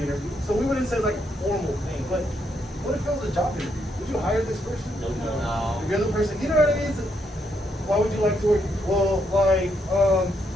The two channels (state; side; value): normal; both; correlation 0.77